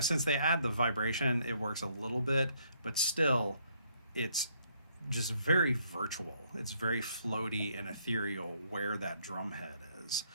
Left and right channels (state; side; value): inverted; both; correlation -0.69